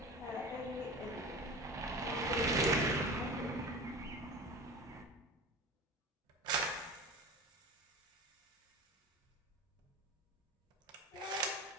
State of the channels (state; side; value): normal; both; correlation 0.32